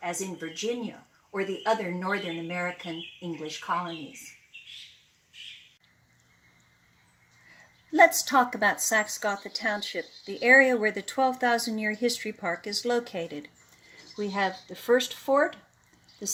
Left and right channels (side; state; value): both; identical; correlation 1.00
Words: as in Virginia or the other Northern American English colonies." Let's talk about Saxe-Gotha Township, the area where the 12,000-year history park is located. We have the first fort, the